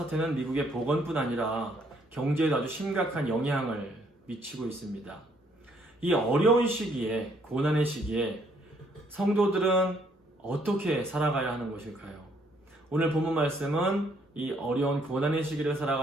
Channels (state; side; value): normal; both; correlation 0.67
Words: 미국의 보건뿐 아니라 경제에도 아주 심각한 영향을 미치고 있습니다. 이 어려운 시기에, 고난의 시기에 성도들은 어떻게 살아가야 하는 것일까요? 오늘 본문 말씀은 이 어려운 고난의 시기를